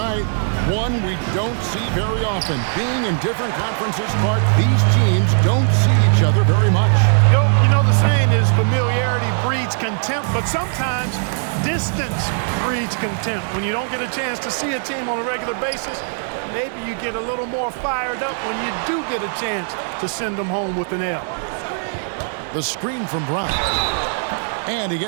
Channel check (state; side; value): silent; left; 66 dB below the other